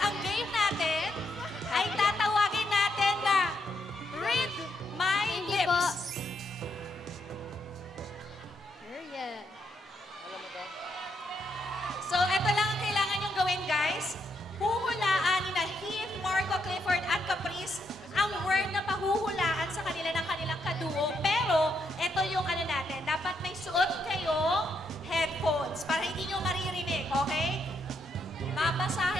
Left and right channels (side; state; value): both; normal; correlation 0.78